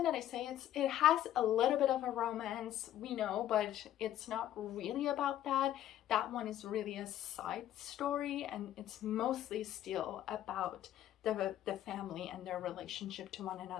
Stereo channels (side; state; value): right; quieter; 12.2 dB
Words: that I say it has a little bit of a romance, we know, but it's not really about that. That one is really a side story, and it's mostly still about the family and their relationship to one